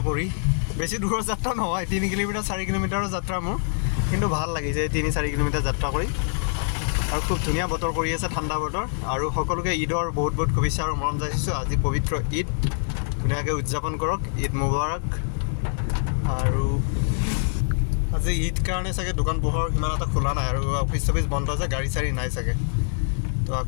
কৰি। বেছি দূৰৰ যাত্ৰা নহয়, 3 কিলোমিটাৰ 4 কিলোমিটাৰৰ যাত্ৰা মোৰ, কিন্তু ভাল লাগিছে 3-4 কিলোমিটাৰ যাত্ৰা কৰি। আৰু খুব ধুনীয়া বতৰ কৰি আছে, ঠাণ্ডা বতৰ। আৰু সকলোকে ঈদৰ বহুত বহুত শুভেচ্ছা আৰু মৰম যাচিছোঁ। আজি পবিত্ৰ ঈদ, ধুনীয়াকৈ উদযাপন কৰক, ঈদ মুবাৰক। আৰু আজি ঈদ কাৰণে চাগে দোকান পোহৰ সিমান এটা খোলা নাই, আৰু অফিচ চফিচ বন্ধ আছে, গাড়ী চাড়ী নাই চাগে। তো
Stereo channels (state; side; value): silent; right; 59 dB below the other